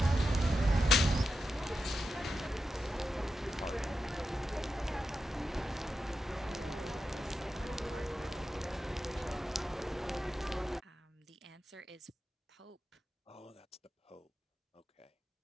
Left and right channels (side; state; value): both; normal; correlation 0.90